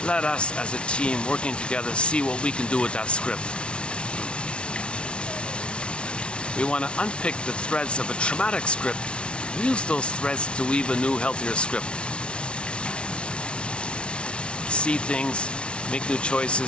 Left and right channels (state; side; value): late; right; 0.058 ms